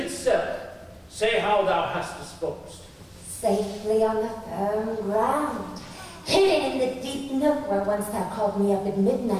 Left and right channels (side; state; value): both; identical; correlation 1.00